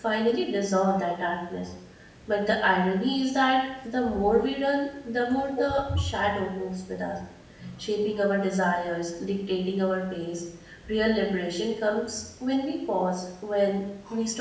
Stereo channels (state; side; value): identical; both; correlation 1.00